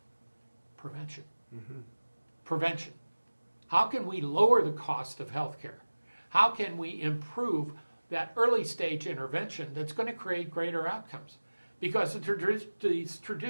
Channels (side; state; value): both; inverted; correlation -1.00